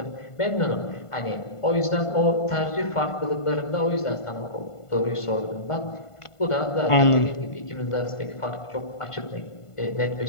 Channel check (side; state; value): right; late; 1.5 ms